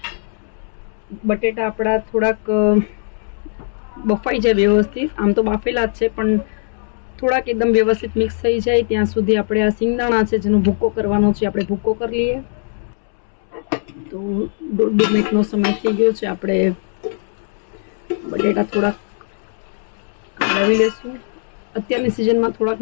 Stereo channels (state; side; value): silent; right; 66 dB below the other